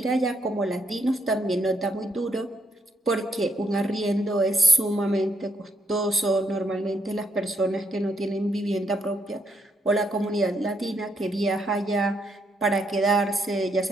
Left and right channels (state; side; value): normal; both; correlation 0.75